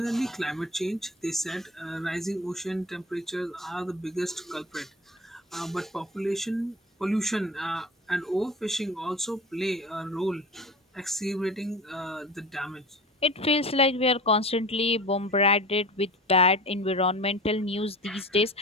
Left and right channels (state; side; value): normal; both; correlation 0.36